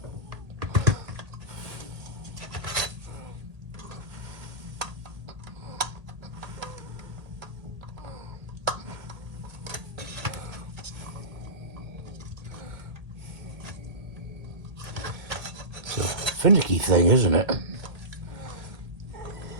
It's a finicky thing, isn't it?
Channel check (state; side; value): late; left; 1.8 ms